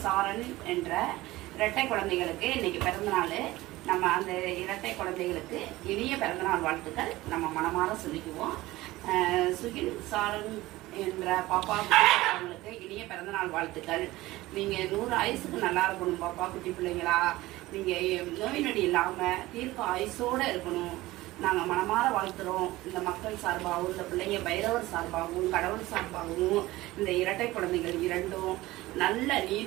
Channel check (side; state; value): left; quieter; 18.3 dB